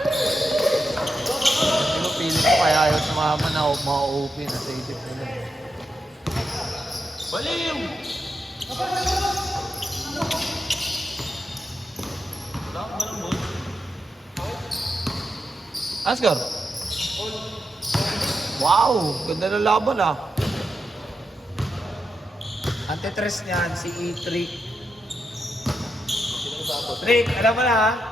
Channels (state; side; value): normal; both; correlation 0.85